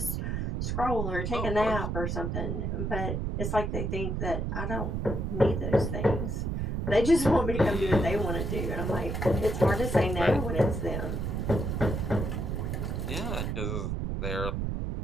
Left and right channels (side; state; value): right; noise; rumble, 1 dB below the sound